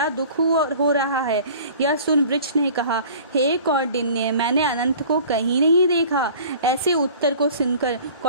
दुख हो रहा है। यह सुन वृक्ष ने कहा, हे कौंडिन्य, मैंने अनंत को कहीं नहीं देखा। ऐसे उत्तर को सुनकर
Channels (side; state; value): both; inverted; correlation -0.46